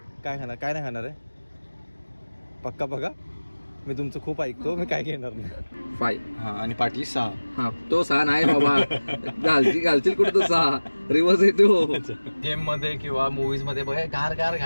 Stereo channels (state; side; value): inverted; both; correlation -1.00